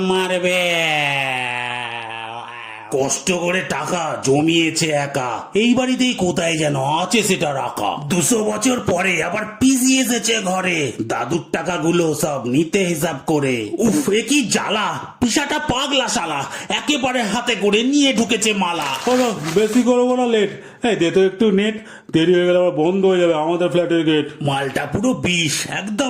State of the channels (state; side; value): identical; both; correlation 1.00